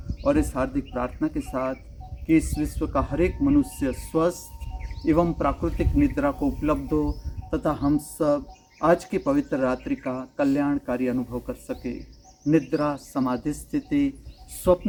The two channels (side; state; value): both; identical; correlation 1.00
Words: और इस हार्दिक प्रार्थना के साथ कि इस विश्व का हर एक मनुष्य स्वस्थ एवं प्राकृतिक निद्रा को उपलब्ध हो तथा हम सब आज की पवित्र रात्रि का कल्याणकारी अनुभव कर सके। निद्रा समाधि स्थिति,